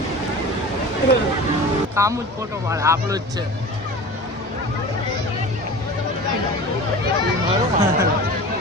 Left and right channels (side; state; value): both; normal; correlation 0.36